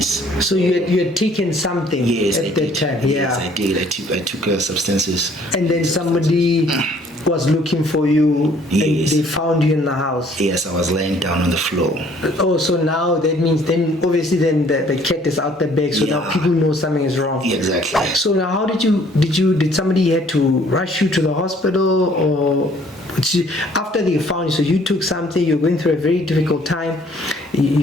So you had taken something at that time? Yes, I did. I took substances. And then somebody was looking for you, and they found you in the house? Yes, I was laying down on the floor. Oh, so now that means then obviously then the cat is out the bag, so now people know something is wrong. Exactly. So now how did somebody had to rush you to the hospital, or after they found you? So you took something, you're going through a very difficult time, you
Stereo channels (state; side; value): normal; both; correlation 0.59